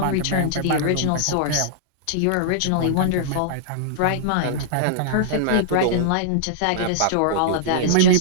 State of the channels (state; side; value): different; both; correlation -0.02